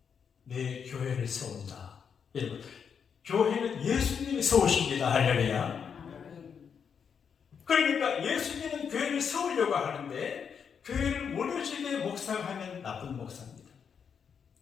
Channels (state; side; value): quieter; right; 6.9 dB